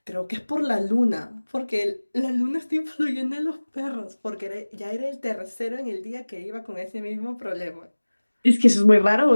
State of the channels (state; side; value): inverted; both; correlation -1.00